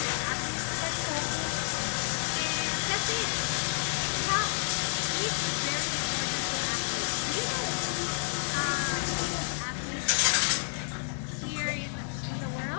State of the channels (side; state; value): right; silent; digital silence